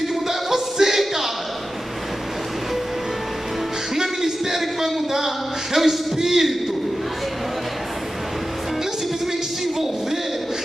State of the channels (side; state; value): both; normal; correlation 0.93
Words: que mudar, é você, cara. Não é ministério que vai mudar, é o Espírito. Não é simplesmente se envolver,